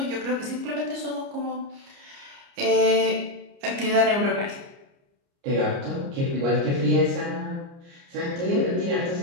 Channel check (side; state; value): left; late; 29 ms